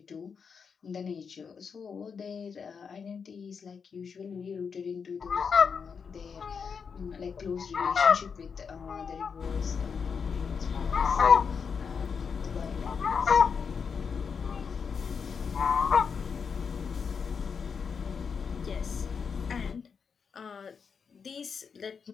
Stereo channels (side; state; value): right; quieter; 6.1 dB